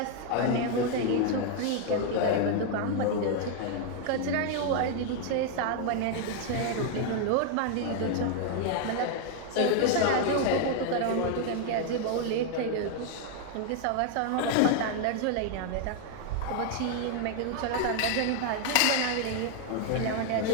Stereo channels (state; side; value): different; both; correlation 0.00